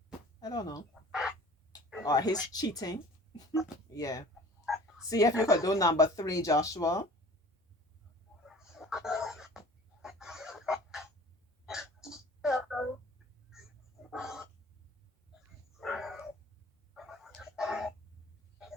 I don't know. Or his cheating. Yeah. See if you could do number 3, Joshua.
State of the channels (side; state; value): both; normal; correlation 0.46